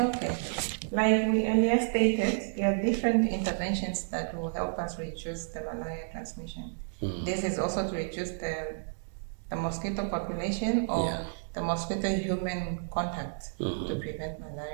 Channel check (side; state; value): left; silent; digital silence